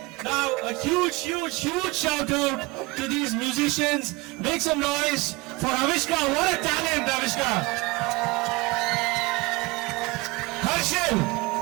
now a huge shout out to these musicians. Make some noise for Avishka. What a talent, Avishka.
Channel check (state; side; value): quieter; left; 23.5 dB